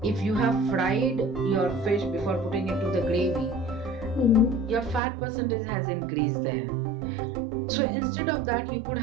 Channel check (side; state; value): left; drops out; at 5.0 s